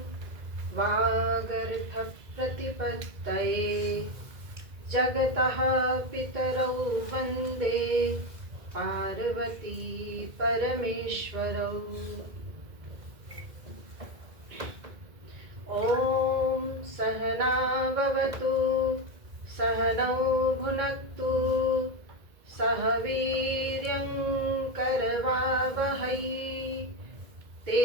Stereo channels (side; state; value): left; late; 2.0 ms